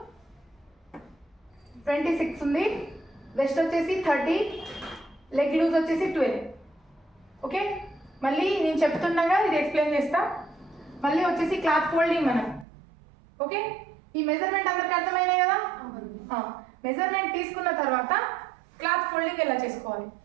26 ఉంది, వెస్ట్ వచ్చేసి 30, లెగ్ లూజ్ వచ్చేసి 12. ఓకే, మళ్ళీ నేను చెప్తున్నాగా ఇది ఎక్స్ప్లెయిన్ చేస్తా. మళ్ళీ వచ్చేసి క్లాత్ ఫోల్డింగ్ మనం. ఓకే, ఈ మెజర్మెంట్ అందరికి అర్థమైనాయి కదా. మెజర్మెంట్ తీసుకున్న తర్వాత క్లాత్ ఫోల్డింగ్ ఎలా చేసుకోవాలి.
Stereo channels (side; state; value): left; drops out; at 12.7 s